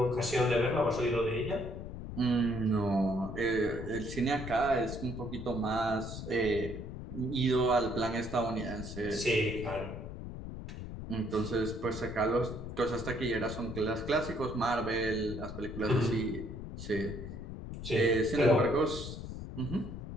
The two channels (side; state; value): left; noise; rumble, 8 dB below the sound